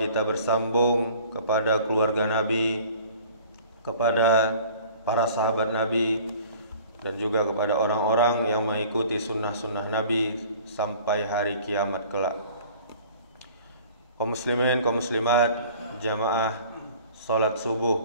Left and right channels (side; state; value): both; inverted; correlation -0.49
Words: bersambung kepada keluarga Nabi, kepada para sahabat Nabi, dan juga kepada orang-orang yang mengikuti sunnah-sunnah Nabi sampai hari kiamat kelak. Kaum muslimin, kaum muslimat, jamaah salat